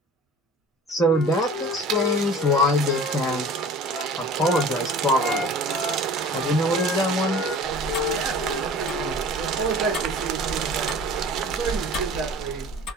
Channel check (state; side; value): normal; both; correlation 0.42